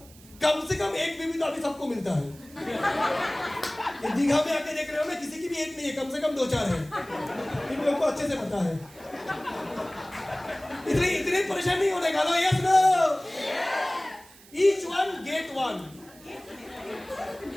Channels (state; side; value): noise; right; hiss, 23 dB below the sound